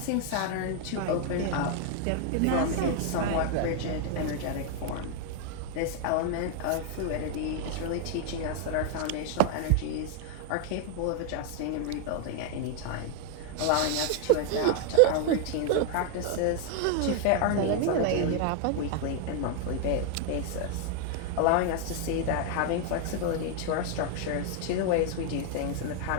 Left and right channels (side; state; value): both; different; correlation 0.00